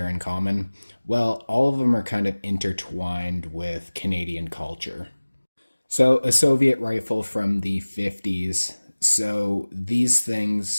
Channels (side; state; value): both; inverted; correlation -1.00